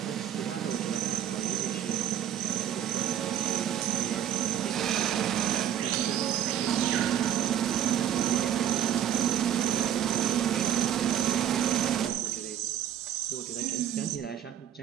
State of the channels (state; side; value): quieter; left; 10.2 dB